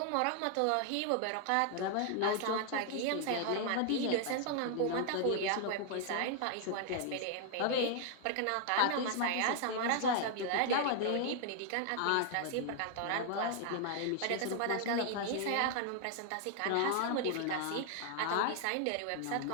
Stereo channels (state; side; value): different; both; correlation 0.00